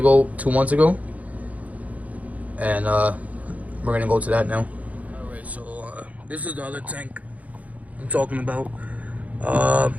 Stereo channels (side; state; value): left; late; 0.071 ms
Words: 2 months ago, and we're gonna go to that now. Alright, so this is the other tank I'm talking about.